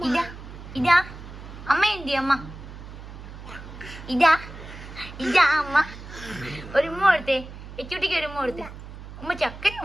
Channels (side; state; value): right; noise; hum, 13 dB below the sound